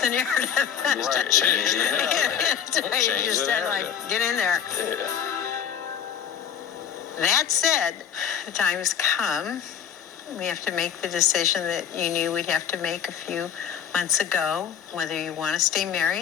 narrative. Right. Change the narrative. You just said, like, get in there. Yeah. That said, the time has come. We have to make the decision that you knew we'd have to make a few months ago, whether you want to stay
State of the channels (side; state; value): right; quieter; 8.6 dB